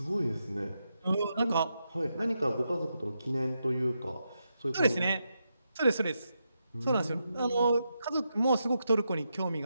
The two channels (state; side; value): inverted; both; correlation -0.85